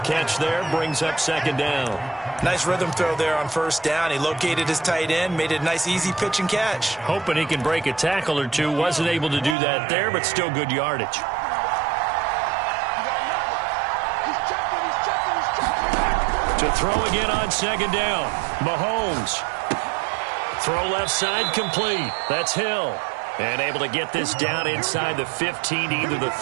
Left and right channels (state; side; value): drops out; left; at 9.6 s